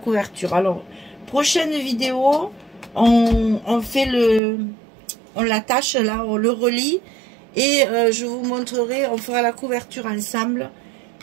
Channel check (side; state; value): left; drops out; at 4.4 s